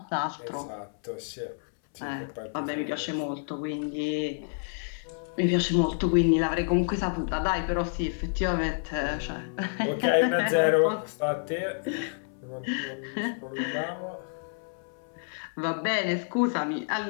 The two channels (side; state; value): right; silent; 59 dB below the other